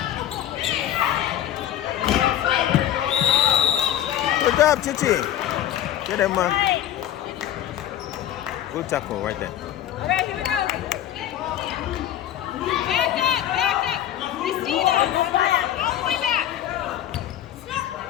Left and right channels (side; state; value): right; quieter; 11.7 dB